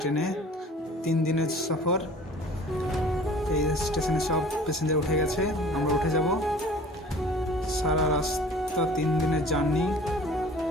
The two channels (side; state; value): both; normal; correlation 0.46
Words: ট্রেনে। 3 দিনের সফর। এই স্টেশনে সব প্যাসেঞ্জার উঠে গেছে, আমরা উঠে যাব। সারা রাস্তা 3 দিনের জার্নি,